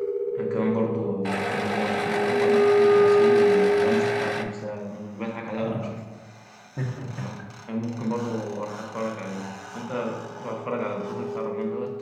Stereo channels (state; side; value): identical; both; correlation 1.00